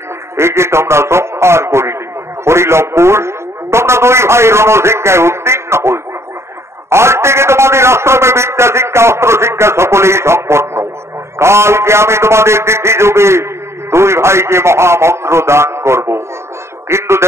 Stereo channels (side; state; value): left; late; 0.13 ms